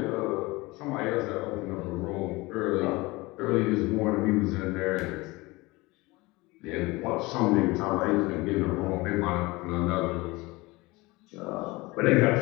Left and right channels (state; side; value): quieter; right; 22.3 dB